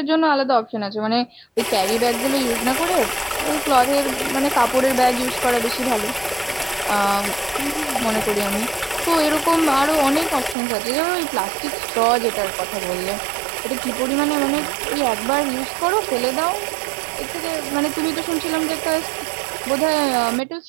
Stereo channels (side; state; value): left; drops out; at 10.6 s